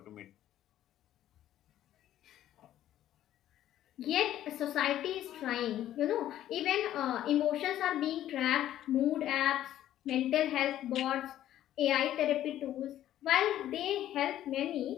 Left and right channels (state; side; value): quieter; right; 12.4 dB